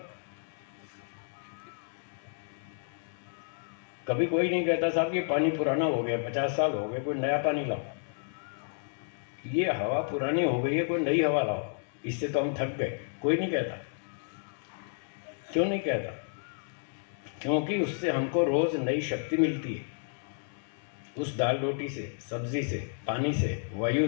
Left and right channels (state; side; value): silent; right; digital silence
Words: कभी कोई नहीं कहता साहब ये पानी पुराना हो गया, 50 साल हो गए, कोई नया पानी लाओ। ये हवा पुरानी हो गई है, कोई नई हवा लाओ, इससे तो हम थक गए। कोई नहीं कहता। क्यों नहीं कहता? क्योंकि उससे हमको रोज नई शक्ति मिलती है। उस दाल रोटी से, सब्जी से, पानी से, वायु